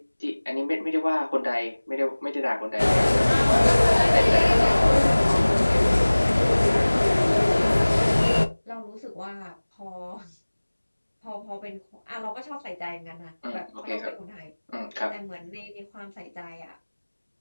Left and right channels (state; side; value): inverted; both; correlation -1.00